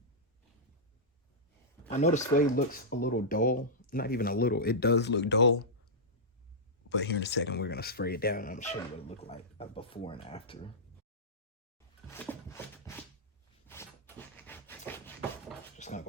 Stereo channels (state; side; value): normal; both; correlation -0.11